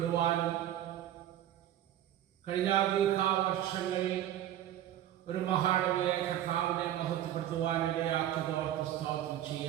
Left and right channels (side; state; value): left; quieter; 12.0 dB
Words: കഴിഞ്ഞ ദീർഘവർഷങ്ങളിൽ ഒരു മഹാടവകയെ കർത്താവിനെ മഹത്വപ്പെടുത്തുവാനിടയാക്കിയതോർത്ത് സ്തോത്രം